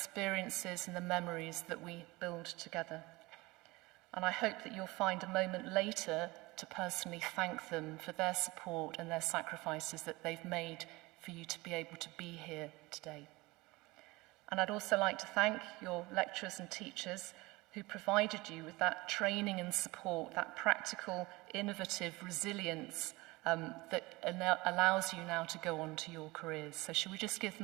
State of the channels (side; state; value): left; quieter; 22.1 dB